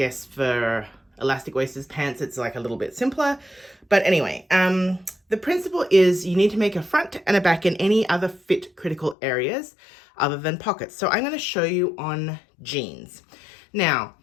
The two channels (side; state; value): right; drops out; at 9.2 s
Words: for elastic waisted pants, it's like a little bit simpler. But anyway, the principle is you need to make a front and a back in any other fit critical areas other than pockets. So I'm going to show you on jeans. Now,